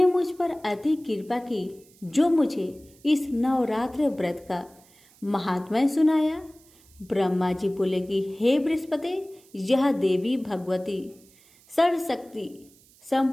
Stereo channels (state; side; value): noise; right; hiss, 28 dB below the sound